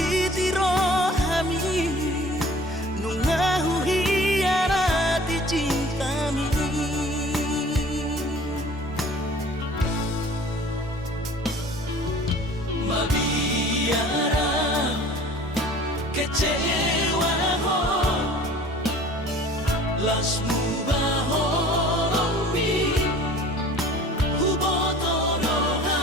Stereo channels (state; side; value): normal; both; correlation 0.47